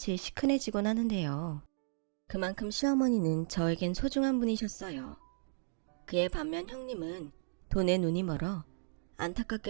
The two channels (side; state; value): left; silent; digital silence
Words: 시큰해지곤 하는데요. 그만큼 시어머니는 저에겐 소중한 분이셨어요. 그에 반면 형님은 돈에 눈이 멀어